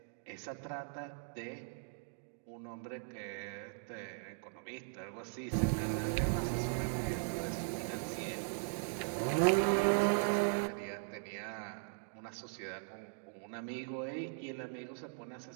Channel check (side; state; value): left; silent; digital silence